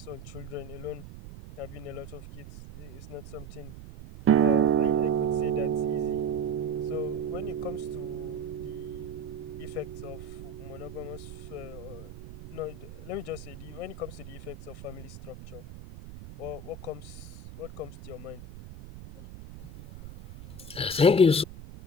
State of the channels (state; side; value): noise; right; rumble, 13 dB below the sound